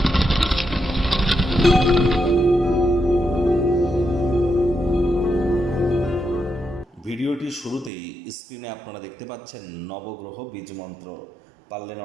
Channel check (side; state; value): left; drops out; at 7.9 s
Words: ভিডিওটির শুরুতেই স্ক্রিনে আপনারা দেখতে পাচ্ছেন নবগ্রহ বীজমন্ত্র। পারলে